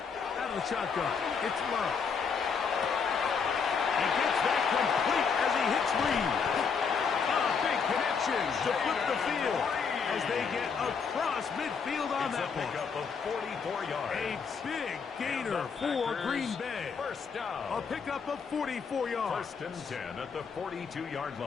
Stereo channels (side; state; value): right; quieter; 5.8 dB